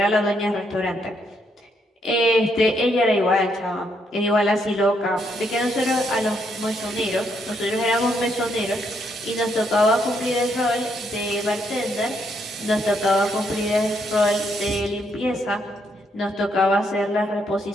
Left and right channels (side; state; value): both; normal; correlation 0.75